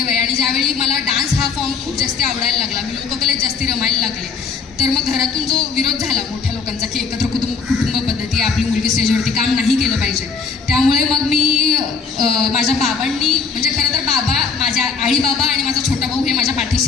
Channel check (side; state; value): right; quieter; 5.3 dB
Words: आहे. आणि ज्यावेळी मला डान्स खूप जास्ती आवडायला लागला, मी लोककलेत जास्ती रमायला लागले. तर मग घरातून जो विरोध झाला मोठ्या लोकांचा की एकत्र कुटुंब पद्धती, आपली मुलगी स्टेजवरती काम नाही केलं पाहिजे, त्यामुळे मग मी माझ्या बाबांनी, म्हणजे खरं तर बाबा, माझ्या आई बाबा आणि माझा छोटा भाऊ हे माझ्या